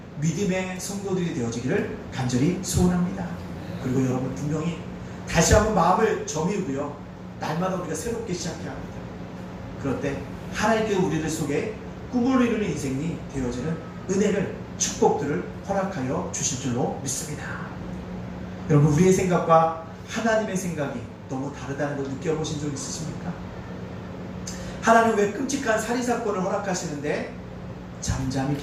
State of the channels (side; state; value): both; identical; correlation 1.00